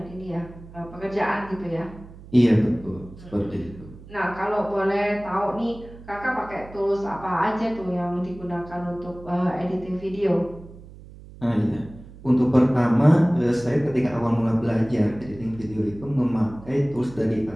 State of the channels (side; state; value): right; noise; hum, 18 dB below the sound